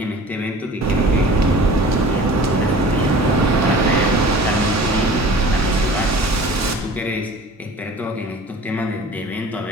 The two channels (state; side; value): normal; both; correlation 0.43